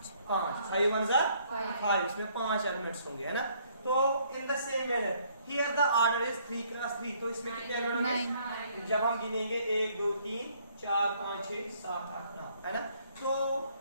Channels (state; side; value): inverted; both; correlation -0.65